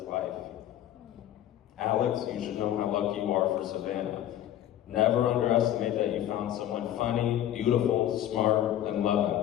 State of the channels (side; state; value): right; quieter; 11.9 dB